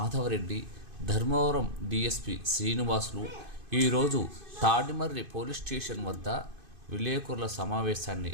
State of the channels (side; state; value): left; late; 2.5 ms